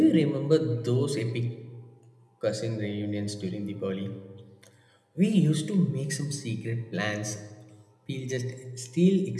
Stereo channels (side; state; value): both; identical; correlation 1.00